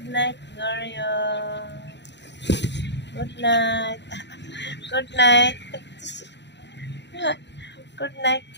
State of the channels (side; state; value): right; late; 0.51 ms